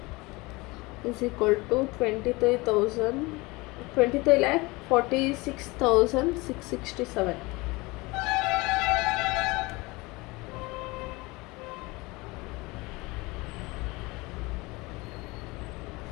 is equal to 23,46,667.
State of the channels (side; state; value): right; quieter; 23.5 dB